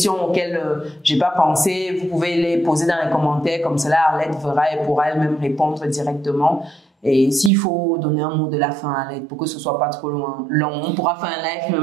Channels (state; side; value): drops out; left; at 7.5 s